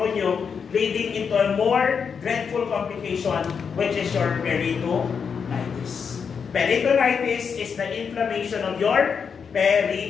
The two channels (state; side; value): quieter; right; 6.3 dB